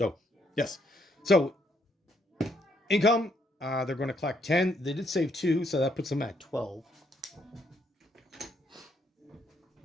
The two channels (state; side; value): normal; both; correlation 0.72